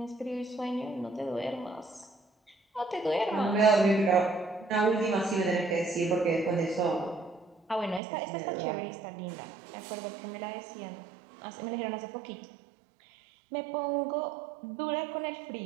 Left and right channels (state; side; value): drops out; left; at 8.0 s